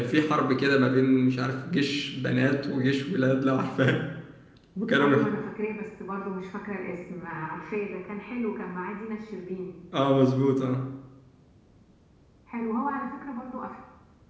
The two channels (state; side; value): identical; both; correlation 1.00